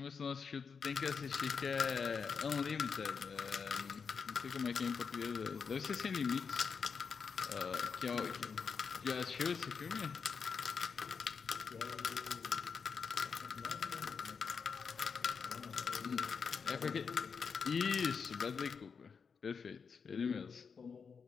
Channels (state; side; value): quieter; right; 5.8 dB